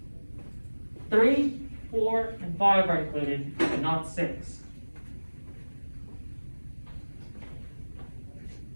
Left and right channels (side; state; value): both; inverted; correlation -1.00